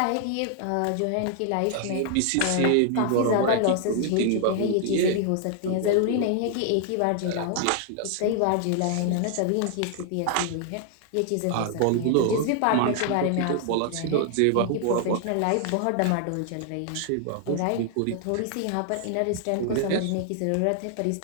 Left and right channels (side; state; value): both; different; correlation 0.00